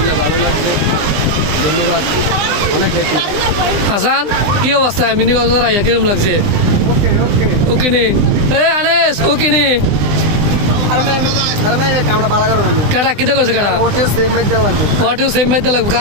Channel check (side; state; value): left; late; 20 ms